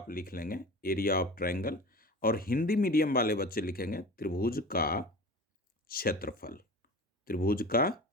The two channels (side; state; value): both; normal; correlation 0.35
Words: लिख लेंगे, एरिया ऑफ ट्रायंगल। और हिंदी मीडियम वाले बच्चे लिखेंगे त्रिभुज का क्षेत्रफल, त्रिभुज का